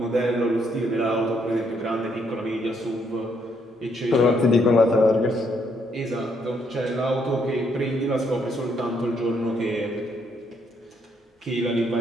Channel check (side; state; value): both; normal; correlation 0.72